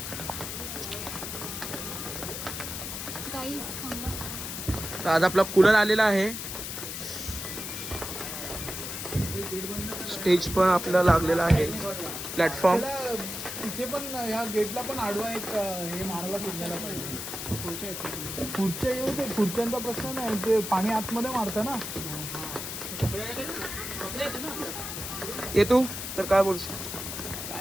तर आज आपला कूलर आलेला आहे. स्टेज पण आपल्याला लागलेला आहे. प्लॅटफॉर्म इथे पण या गेटला पण आडवा एक हे मारायला सुटलेला पाहिजे. खुर्च्या येऊ ते खुर्च्यांचा प्रश्न नाही, ते पाणी आतमध्ये मारतं ना. ये तू तर काय बोलशील?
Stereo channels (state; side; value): noise; left; hiss, 6 dB below the sound